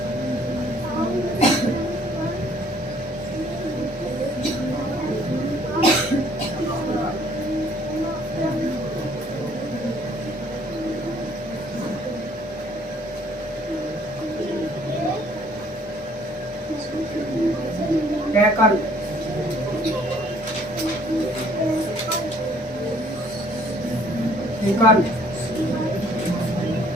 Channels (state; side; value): normal; both; correlation 0.60